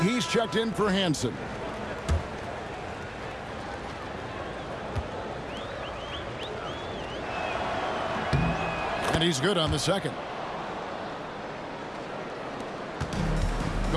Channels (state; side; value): identical; both; correlation 1.00